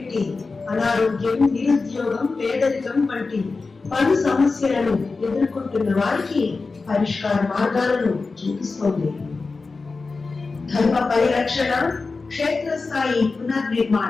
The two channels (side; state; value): right; quieter; 4.1 dB